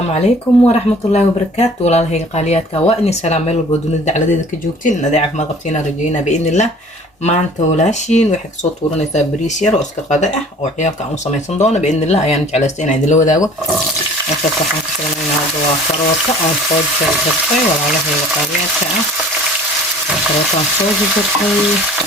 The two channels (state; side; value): normal; both; correlation 0.49